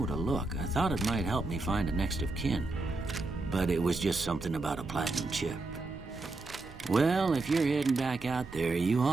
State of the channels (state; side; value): quieter; left; 3.3 dB